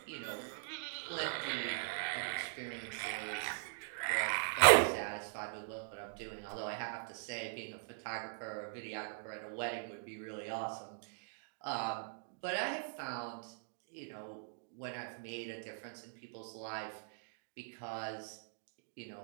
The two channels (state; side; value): silent; left; digital silence